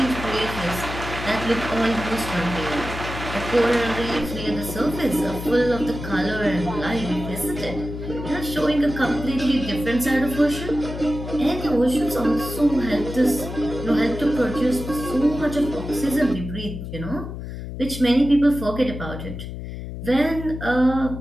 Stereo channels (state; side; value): noise; left; hum, 8 dB below the sound